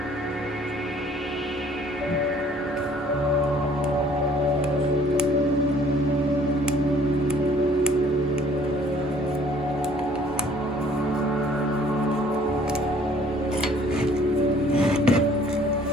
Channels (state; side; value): normal; both; correlation 0.57